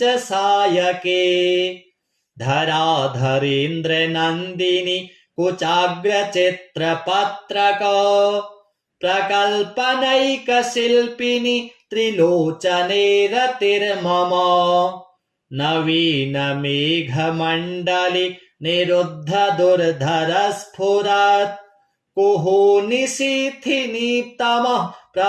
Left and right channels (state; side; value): identical; both; correlation 1.00